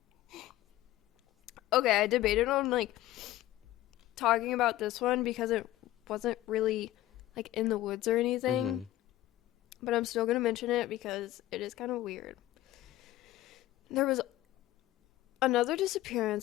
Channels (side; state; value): right; quieter; 15.3 dB